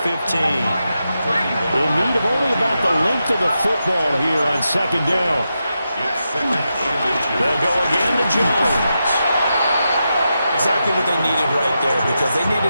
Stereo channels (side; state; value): both; inverted; correlation -0.87